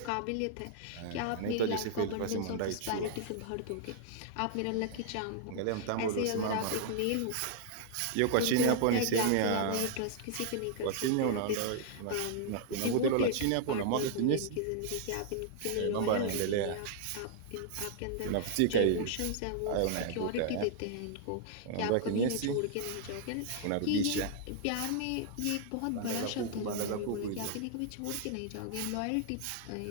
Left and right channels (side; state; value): both; different; correlation -0.01